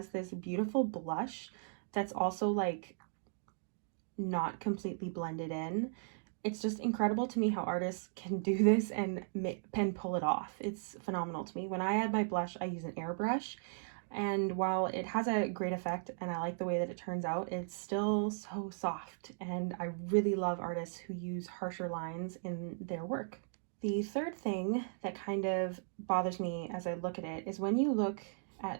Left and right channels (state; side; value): silent; left; digital silence